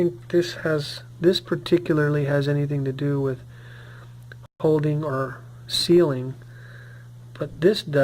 this particularly has anything to do with holding or sealing, but this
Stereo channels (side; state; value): both; identical; correlation 1.00